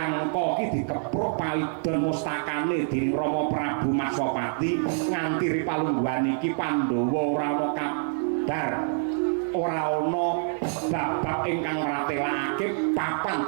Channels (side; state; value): left; silent; 55 dB below the other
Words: ki dikepruk paidon mustakane dening Rama Prabu Maswapati nganti ripalungguhan iki Pandhawa ora ana kabar ora ana babak ingkang ratelakake papan